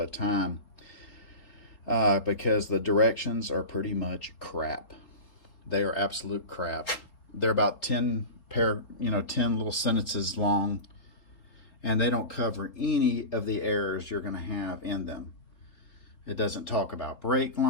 time, because the directions are pretty much crap. They are absolute crap. They're about 10 little sentences long, and they don't cover any of the errors you're going to have in them. It doesn't talk about brake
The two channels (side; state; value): right; late; 3.8 ms